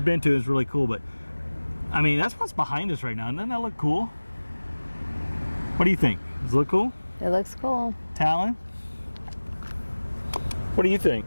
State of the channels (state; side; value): inverted; both; correlation -1.00